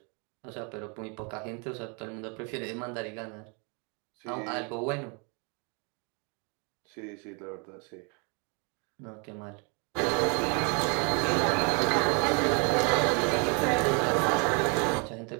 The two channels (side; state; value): left; quieter; 34.6 dB